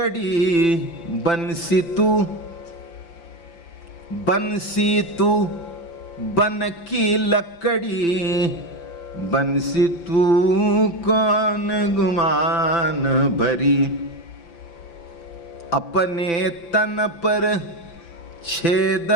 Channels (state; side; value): late; right; 5.9 ms